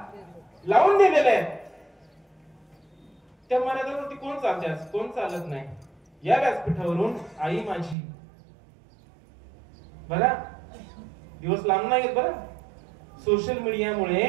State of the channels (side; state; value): left; drops out; at 8.0 s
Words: लावून दिलेल्या आहेत त्या मर्यादावरती कोण चालते, कोण चालत नाही. या व्यासपीठावरून आई माझी बघा, दिवस लांब नाही बरं. सोशल मीडियामुळे